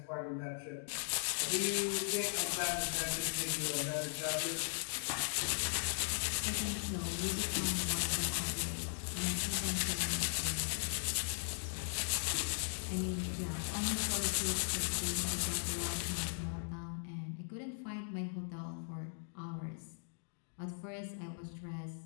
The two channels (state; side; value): silent; right; digital silence